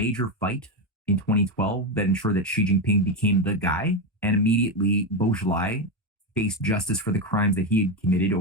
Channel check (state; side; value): normal; both; correlation 0.11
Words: fight in 2012 that ensured that Xi Jinping became the guy. And immediately, Bo Xilai faced justice for the crimes that he had committed